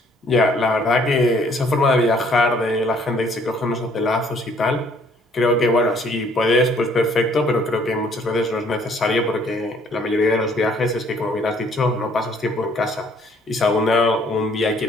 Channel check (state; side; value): normal; both; correlation 0.61